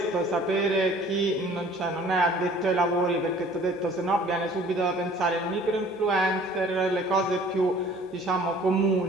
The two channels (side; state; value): both; normal; correlation 0.51